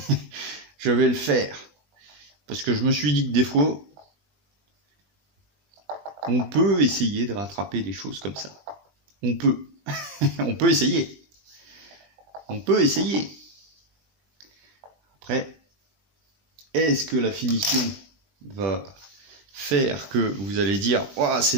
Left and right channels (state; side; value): late; left; 20 ms